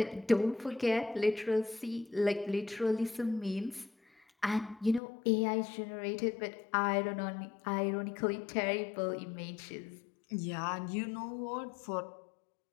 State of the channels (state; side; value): drops out; right; at 5.0 s